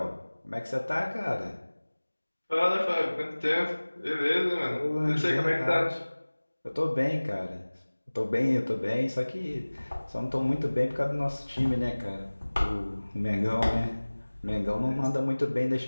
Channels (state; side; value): inverted; both; correlation -1.00